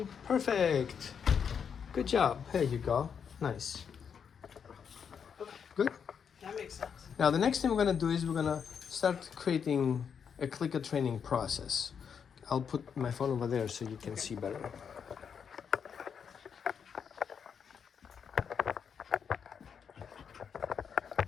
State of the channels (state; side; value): quieter; right; 7.1 dB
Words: Perfect. Good job. There you go. Nice. Good. That makes sense. Now the next thing we're gonna do is we're gonna start creating a clicker training process. I'll put my phone over there so you can see better.